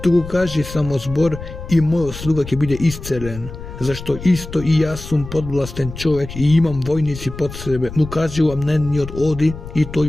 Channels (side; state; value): left; noise; rumble, 11 dB below the sound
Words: туку кажи само збор и мојот слуга ќе биде исцелен. Зашто исто и јас сум подвластен човек и имам војници под себе. Му кажувам на едниот оди и